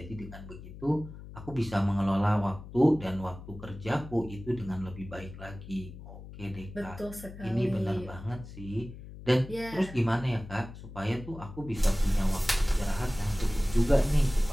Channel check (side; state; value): left; noise; hum, 14 dB below the sound